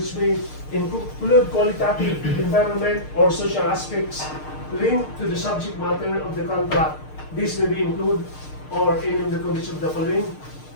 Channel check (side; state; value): right; late; 6.6 ms